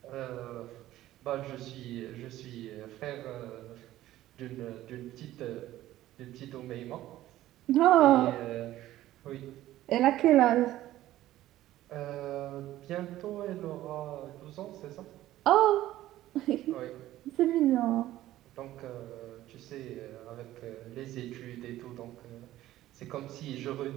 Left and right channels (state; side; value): quieter; left; 14.6 dB